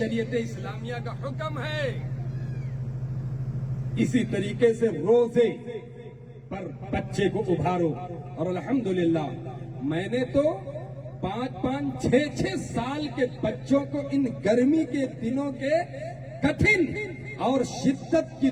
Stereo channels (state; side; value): identical; both; correlation 1.00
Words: اسلامیہ کا حکم ہے. اسی طریقے سے روزے پر بچے کو ابھارو. اور الحمدللہ میں نے تو 5-5, 6-6 سال کے بچوں کو ان گرمی کے دنوں کے کٹھن اور شدت کی